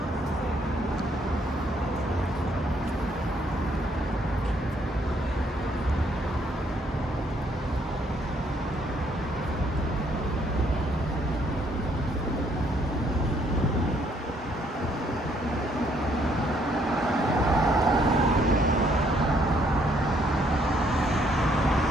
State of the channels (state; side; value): normal; both; correlation 0.68